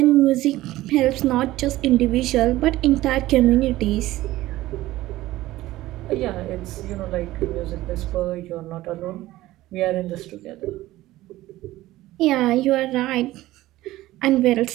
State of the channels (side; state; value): left; quieter; 16.5 dB